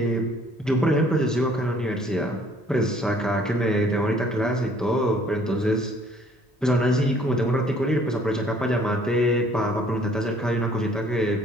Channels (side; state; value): both; normal; correlation 0.59